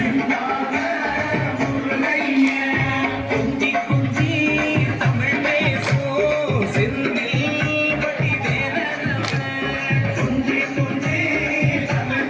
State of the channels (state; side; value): identical; both; correlation 1.00